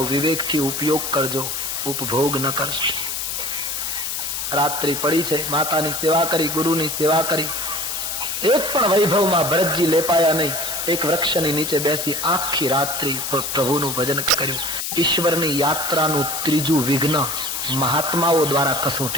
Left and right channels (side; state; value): left; noise; hiss, 3 dB below the sound